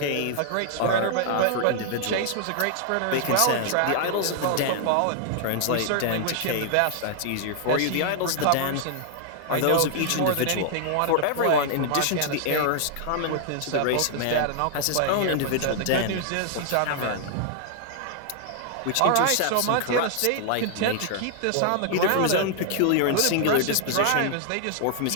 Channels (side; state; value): both; different; correlation -0.01